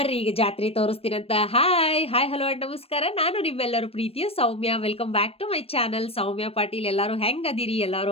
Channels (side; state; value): right; late; 0.28 ms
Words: ಈಗ ಜಾತ್ರೆ ತೋರಿಸ್ತೀನಂತ. ಹಾಯ್ ಹಲೋ ಅಂಡ್ ನಮಸ್ಕಾರ. ನಾನು ನಿಮ್ಮೆಲ್ಲರೂ ಪ್ರೀತಿಯ Soumya. Welcome back to my channel Soumya Patil. ಎಲ್ಲಾರು ಹೆಂಗ್ ಅದಿರಿ?